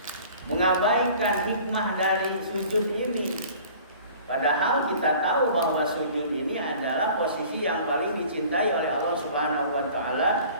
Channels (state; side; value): inverted; both; correlation -0.47